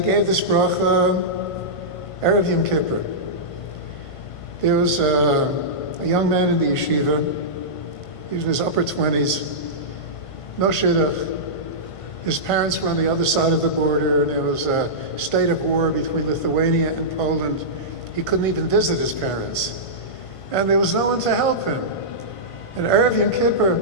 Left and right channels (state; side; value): late; right; 1.5 ms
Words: this bracha Erev Yom Kippur. There was a young man in the yeshiva. He was in his upper 20s. No shidduch. His parents were on the other side of the border, and there was a state of war between Lithuania and Poland. He couldn't even visit his parents. And there was no one to help him. And Erev Yom Kippur,